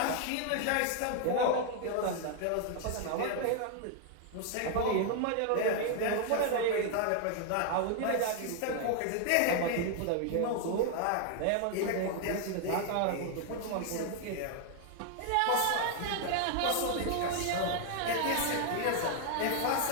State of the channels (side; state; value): both; different; correlation 0.00